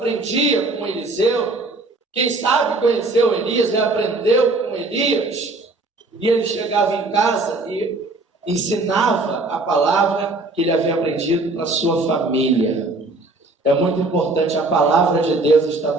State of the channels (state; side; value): quieter; left; 3.1 dB